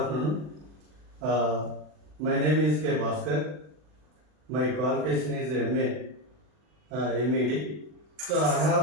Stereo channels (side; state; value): left; late; 40 ms